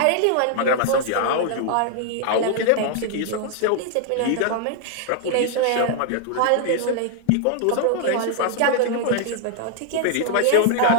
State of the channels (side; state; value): both; different; correlation 0.00